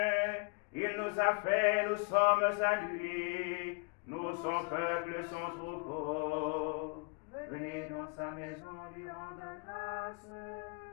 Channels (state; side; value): quieter; right; 34.2 dB